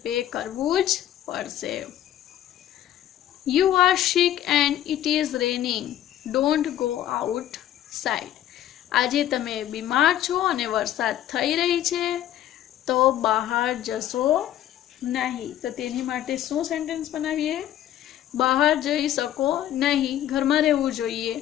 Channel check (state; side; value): quieter; right; 11.9 dB